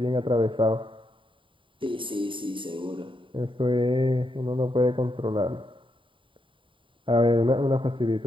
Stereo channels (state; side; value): late; left; 0.25 ms